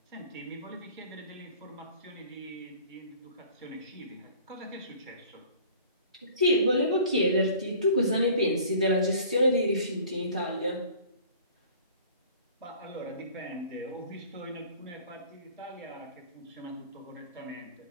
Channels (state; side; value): inverted; both; correlation -0.48